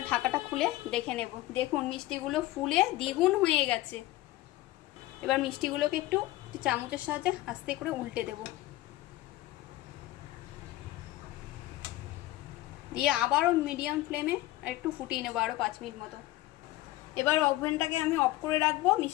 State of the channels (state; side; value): quieter; right; 17.4 dB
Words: ঢাকাটা খুলে দেখে নেব। দেখুন মিষ্টিগুলো ফুলে দ্বিগুণ হয়ে গেছে। এবার মিষ্টিগুলোকে একটু চামচের সাহায্যে আস্তে করে উল্টে দেব, দিয়ে আবারও মিডিয়াম ফ্লেমে একটু ফুটিয়ে নেব আরও 5 মিনিট মতো। এবার ওভেনটাকে আমি অফ করে রাখবো,